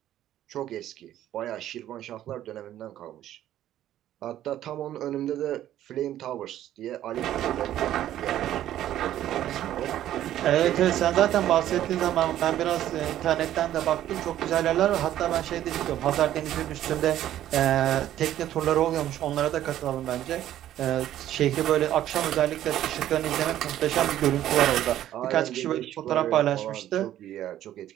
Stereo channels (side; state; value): left; quieter; 12.4 dB